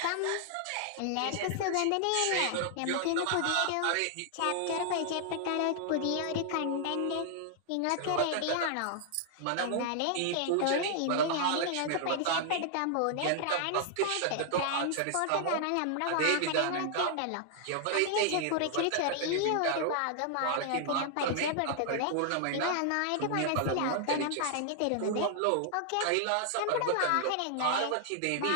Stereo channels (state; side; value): different; both; correlation 0.00